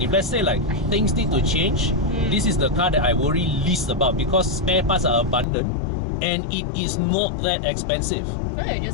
If let's say like things need to change, this is the car that I worry least about, because spare parts are abundant. and it is not that expensive. No, you're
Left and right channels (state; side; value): drops out; right; at 5.5 s